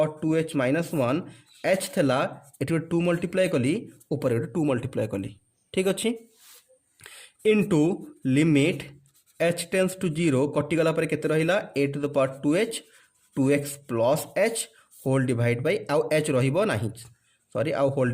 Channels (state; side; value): identical; both; correlation 1.00